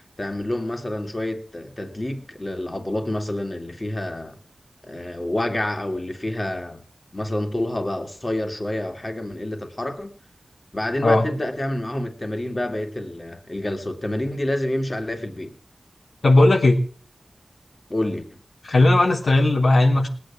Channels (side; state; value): both; normal; correlation 0.97